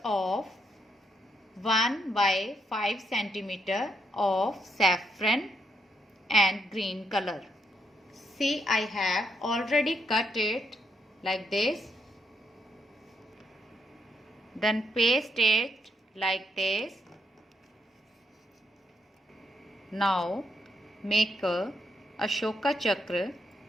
of 1 by 5 centimeter of saffron and green color. See, I have already cut it like this. Then paste it like this. Now make a Ashoka Chakra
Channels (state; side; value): normal; both; correlation 0.77